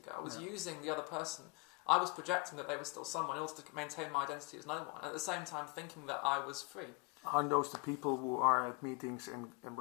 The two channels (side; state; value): right; quieter; 30.6 dB